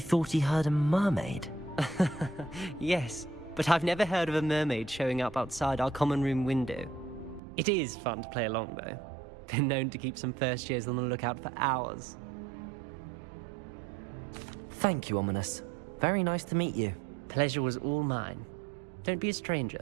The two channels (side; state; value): left; drops out; at 7.4 s